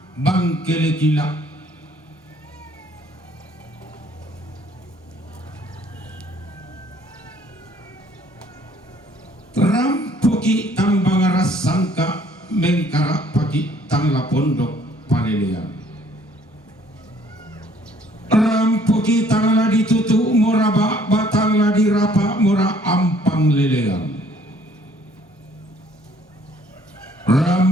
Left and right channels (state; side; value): normal; both; correlation 0.60